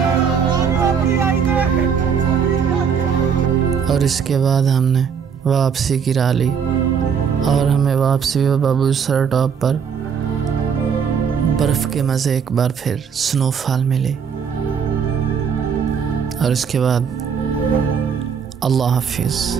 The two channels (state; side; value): quieter; left; 6.9 dB